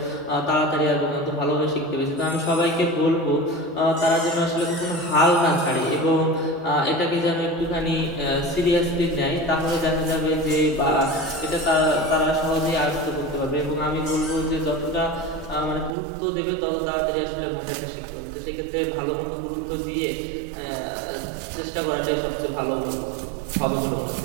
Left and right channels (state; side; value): drops out; left; at 15.9 s